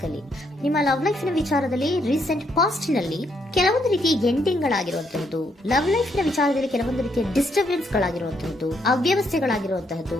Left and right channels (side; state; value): both; normal; correlation 0.74